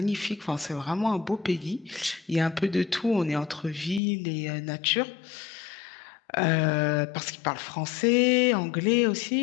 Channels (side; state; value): right; drops out; at 4.0 s